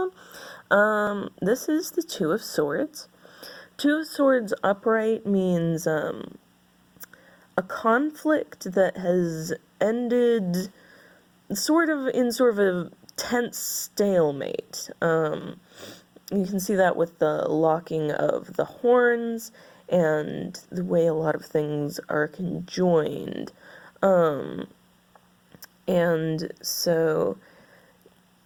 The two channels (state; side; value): identical; both; correlation 1.00